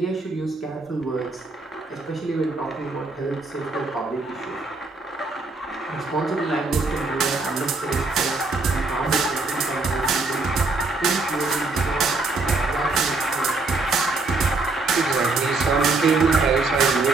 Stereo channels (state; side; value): quieter; left; 3.5 dB